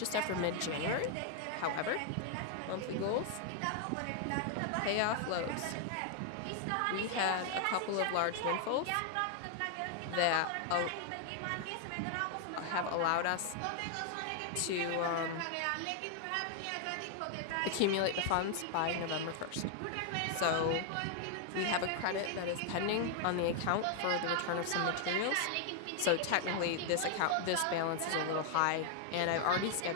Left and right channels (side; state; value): both; different; correlation 0.00